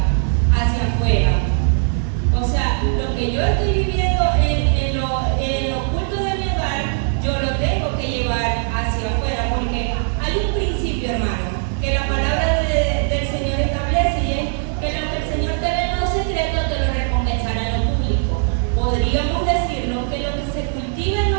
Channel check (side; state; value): left; silent; 62 dB below the other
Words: hacia afuera. O sea, lo que yo estoy viviendo en lo oculto de mi hogar, yo lo tengo que llevar hacia afuera, porque hay un principio, hermano, que la palabra del Señor establece, y es que lo que el Señor te ve en lo secreto te lo recompensará en lo público. Podríamos decirlo que lo que se cultiva en